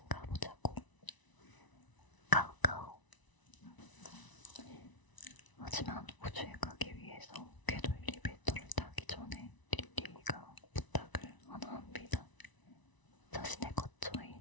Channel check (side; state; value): right; late; 1.0 ms